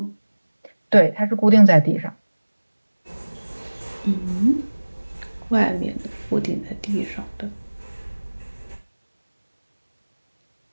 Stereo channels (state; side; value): inverted; both; correlation -1.00